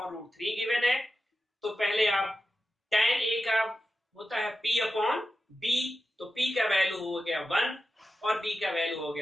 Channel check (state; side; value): normal; both; correlation 0.92